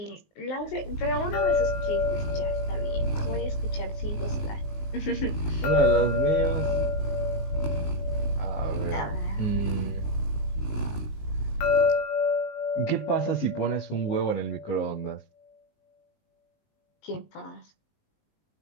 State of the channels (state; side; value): late; right; 19 ms